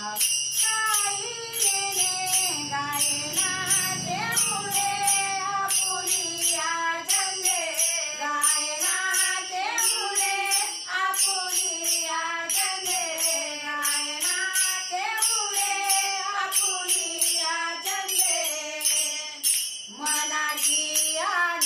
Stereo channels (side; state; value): both; identical; correlation 1.00